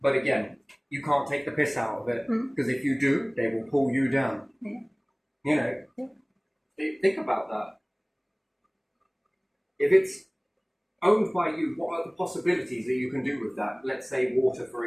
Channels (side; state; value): both; identical; correlation 1.00